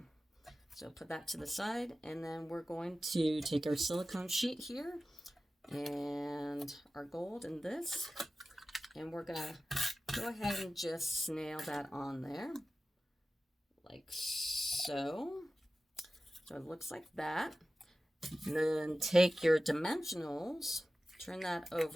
So put that to the side, and then we're going to take our silicone sheet here and our gold in this, and we're gonna go ahead and just snail that on there like so. So it looks like that. And then take your dimensionals, turn that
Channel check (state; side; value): normal; both; correlation 0.95